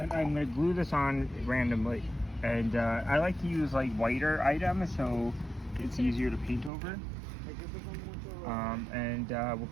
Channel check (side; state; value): left; drops out; at 6.7 s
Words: I'm gonna glue this on randomly, and I like to use like whiter items so it's easier to paint over. And we'll